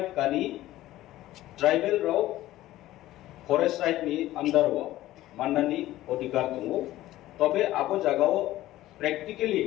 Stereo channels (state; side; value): quieter; right; 15.3 dB